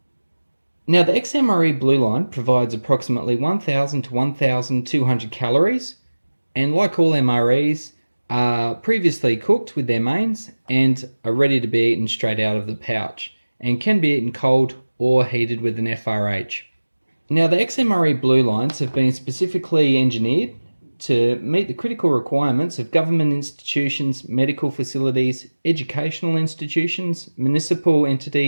Now the XMRE Blue line provides approximately 1000 to 1200 calories, and like all MREs, are previously cooked with their mains and are ready to be eaten straight out of the pouch and can be eaten cold or heated with an FRH. Now the XMRE Blue lines have been specifically engineered to meet the critical requirements of government institutions, medical facilities, educational institutions, municipal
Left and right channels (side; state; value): both; inverted; correlation -1.00